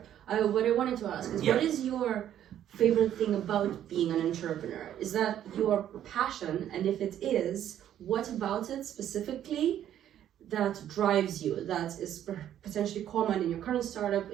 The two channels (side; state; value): left; quieter; 10.9 dB